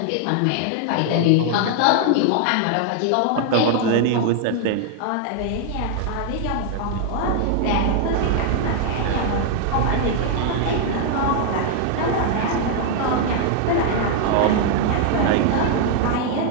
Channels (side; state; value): both; different; correlation 0.00